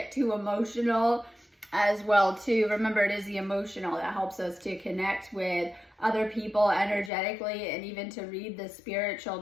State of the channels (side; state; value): right; drops out; at 7.1 s